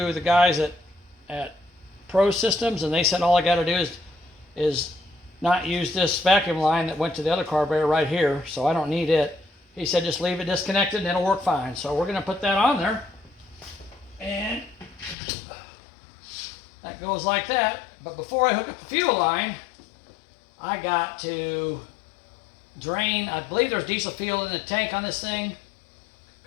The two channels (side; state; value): right; drops out; at 15.2 s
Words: the guys at Pro Systems, and they said all I got to do is not use this vacuum line that went to the other carburetor right here, so I don't need it. He said just leave it disconnected and it'll work fine. So we're going to put that on there, and that goes like that. But before I hook up the fuel line, I got to drain, I believe there's diesel fuel in the tank on this thing,